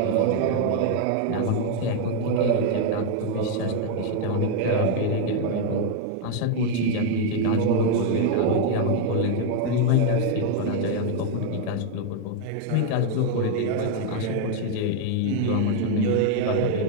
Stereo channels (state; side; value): different; both; correlation 0.00